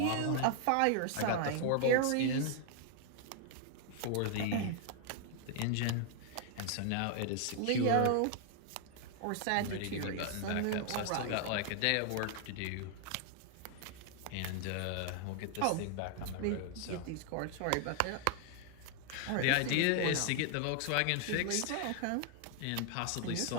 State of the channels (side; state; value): both; different; correlation 0.00